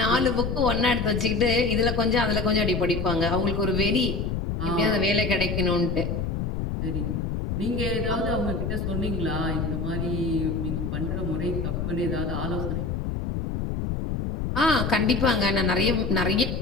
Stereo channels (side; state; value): left; noise; rumble, 2 dB below the sound